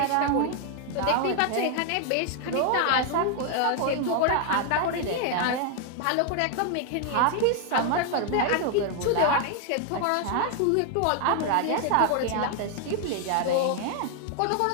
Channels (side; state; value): both; different; correlation 0.00